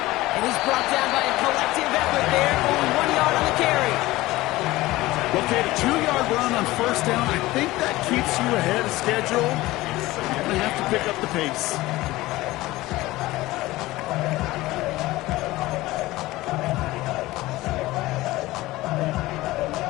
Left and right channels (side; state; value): right; quieter; 18.4 dB